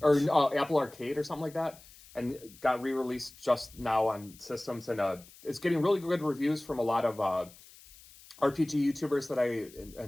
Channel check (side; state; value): left; noise; hiss, 22 dB below the sound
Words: Or Apple Arcade or something like that, and got re-released just now on systems, and it's getting really good reviews from a lot of RPG YouTubers that I